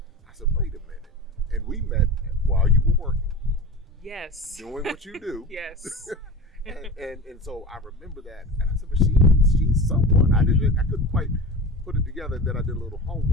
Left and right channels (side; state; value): both; normal; correlation 0.31